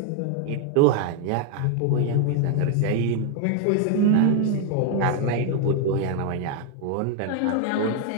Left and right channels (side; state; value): both; different; correlation 0.01